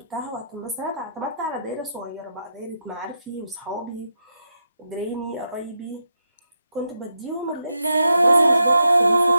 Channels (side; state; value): both; inverted; correlation -0.83